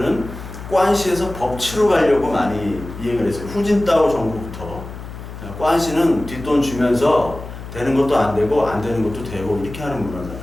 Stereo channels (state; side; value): noise; left; hum, 12 dB below the sound